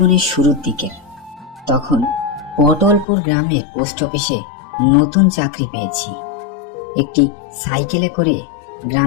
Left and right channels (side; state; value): right; drops out; at 3.1 s